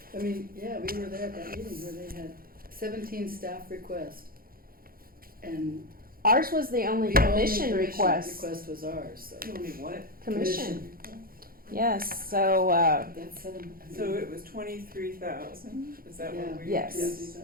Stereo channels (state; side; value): late; left; 0.42 ms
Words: I mean, yeah, we were there at that meeting where they had 17 staff requests. And Ours was the only the only commission commission request. request was ours, so. Only what? Commission. Yes, so, That's seven. So it was 23,000. Is that Yeah. what we? Yes.